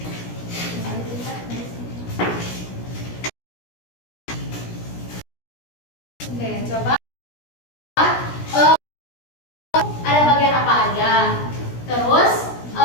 Oke, coba ada bagian apa aja. Terus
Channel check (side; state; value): right; late; 17 ms